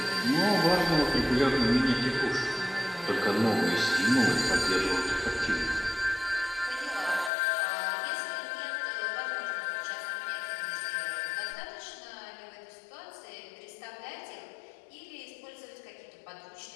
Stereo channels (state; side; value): drops out; right; at 7.3 s